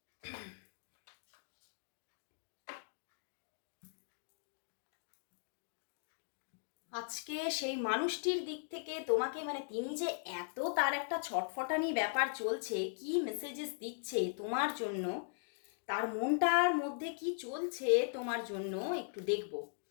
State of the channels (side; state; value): right; silent; digital silence